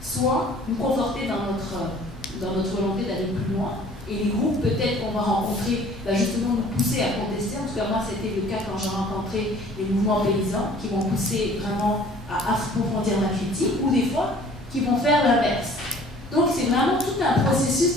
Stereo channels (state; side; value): normal; both; correlation 0.52